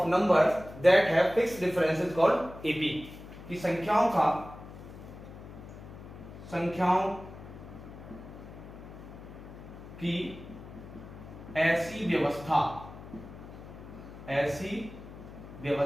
numbers that have fix difference is called AP. कि संख्याओं की ऐसी व्यवस्था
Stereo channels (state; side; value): noise; left; hum, 15 dB below the sound